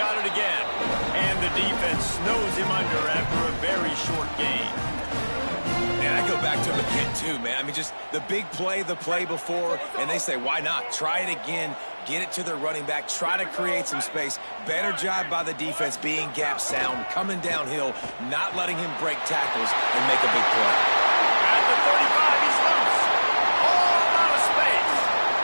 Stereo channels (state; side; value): inverted; both; correlation -1.00